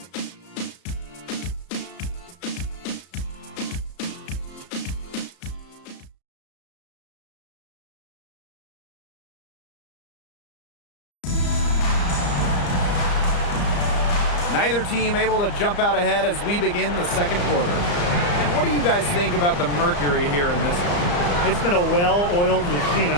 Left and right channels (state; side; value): late; right; 34 ms